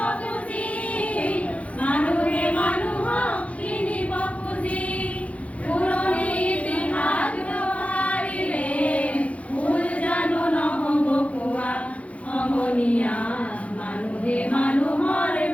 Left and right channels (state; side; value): late; right; 0.065 ms